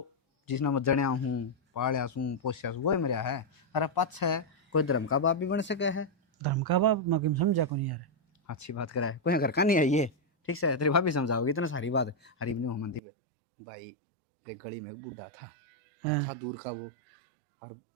जिसने मैं जड़िया हूँ पालिया हूँ पोसिया हूँ, वो ही मेरा है। अरे पक्ष है कोई धर्म का बाप भी बन सके है। धर्म का बाप मैं किम समझा को नहीं यार। अच्छी बात करा है, कोई घर का नहीं है ये। ठीक से तेरी भाभी समझाओगी इतना सारी बात। हरी भी नहीं होमंती पे भाई, एक गली में एक बूढ़ा था था दूर का वो। और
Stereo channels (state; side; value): drops out; left; at 13.0 s